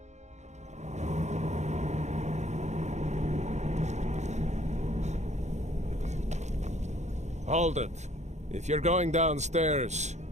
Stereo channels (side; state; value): left; late; 0.33 ms